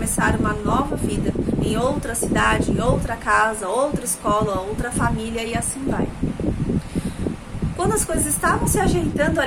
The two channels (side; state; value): both; identical; correlation 1.00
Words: uma nova vida, em outra cidade, em outra casa, outra escola, outra família, e assim vai. Quando as coisas estavam se ajeitando